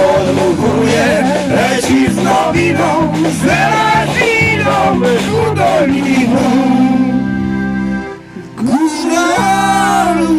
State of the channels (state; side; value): identical; both; correlation 1.00